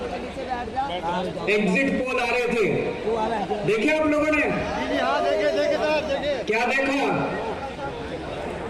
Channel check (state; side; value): identical; both; correlation 1.00